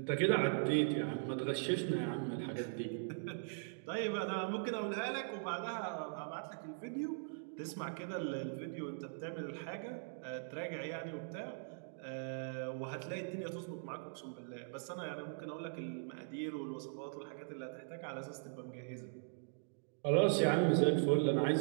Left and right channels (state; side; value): silent; left; digital silence